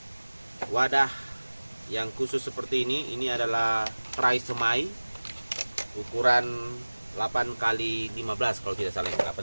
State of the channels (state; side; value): inverted; both; correlation -1.00